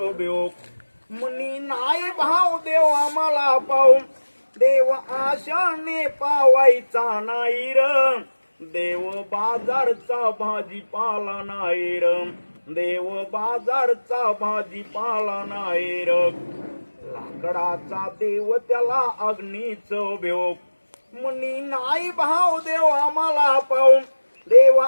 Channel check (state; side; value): inverted; both; correlation -1.00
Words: बेव मनी नाही भाव देव आम्हाला पाऊ देव आशाने पावायचा नाही र देव बाजारचा भाजीपाला नाही र देव बाजारचा भाजीपाला नाही र लाकडाचा देव त्याला अग्नीचं बेव मनी नाही भाव देव आम्हाला पाहून देव